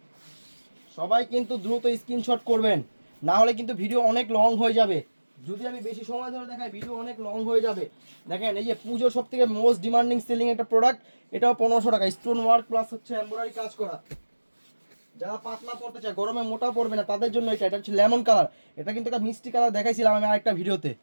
সবাই কিন্তু দ্রুত স্ক্রিনশট করবেন, না হলে কিন্তু ভিডিও অনেক লং হয়ে যাবে। যদি আমি বেশি সময় ধরে দেখাই ভিডিও অনেক লং হয়ে যাবে। দেখেন এই যে পুজোর সব থেকে মোস্ট ডিমান্ডিং সেলিং একটা প্রোডাক্ট, এটাও 1500 টাকা। স্টোন ওয়ার্ক প্লাস হচ্ছে এমব্রয়ডারি কাজ করা। যারা পাতলা পড়তে চায়, গরমে মোটা পড়বে না, তাদের জন্য এটা। এটা হচ্ছে লেমন কালার। এটা কিন্তু একটা মিষ্টি কালার দেখাইছিলাম আমি আরেকটা ভিডিওতে।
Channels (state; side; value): inverted; both; correlation -1.00